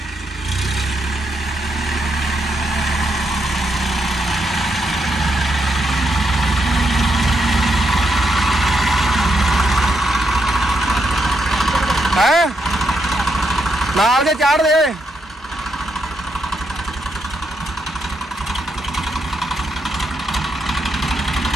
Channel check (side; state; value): both; normal; correlation 0.80